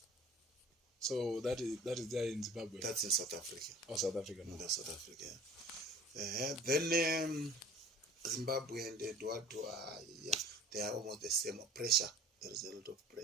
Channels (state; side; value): normal; both; correlation 0.46